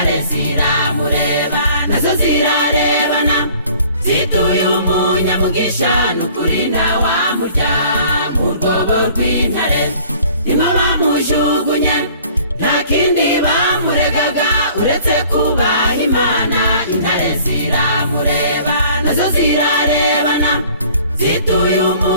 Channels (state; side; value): inverted; both; correlation -0.52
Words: ziramureba nazo zirarebana zituye umunyamugisha n'ukuri ntawamurya mu rwobo rw'intare. Nimo bamujugunye nta kindi bamuregaga uretse kubaha Imana. Intare ziramureba nazo zirarebana zituye